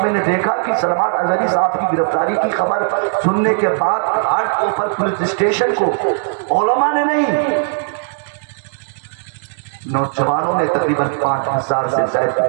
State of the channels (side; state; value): left; silent; 68 dB below the other